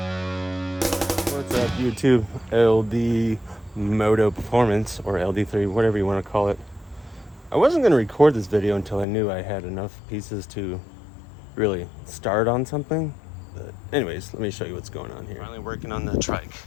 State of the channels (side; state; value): right; drops out; at 9.1 s